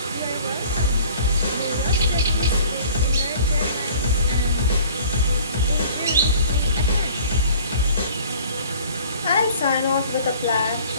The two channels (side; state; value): both; inverted; correlation -0.49